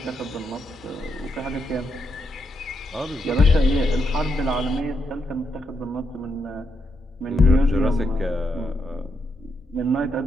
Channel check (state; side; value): normal; both; correlation 0.81